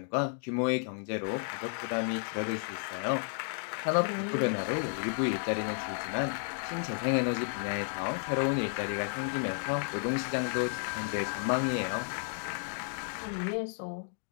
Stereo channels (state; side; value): silent; right; 56 dB below the other